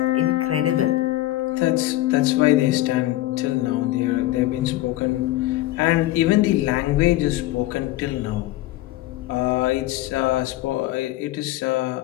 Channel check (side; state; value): right; quieter; 16.0 dB